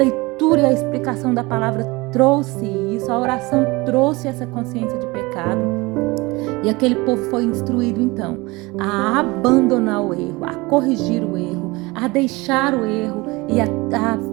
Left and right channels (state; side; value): quieter; left; 23.4 dB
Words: e a explicação da palavra trouxe isso, a oração trouxe essa consciência de pecado. E aquele povo foi instruído então a abandonar o erro, a corrigir o erro, a deixar o erro e a